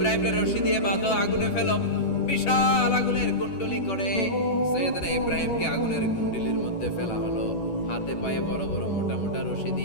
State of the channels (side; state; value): right; late; 11 ms